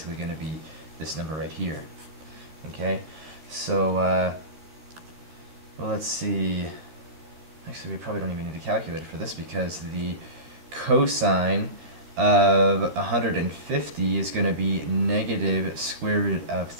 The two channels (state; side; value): late; left; 13 ms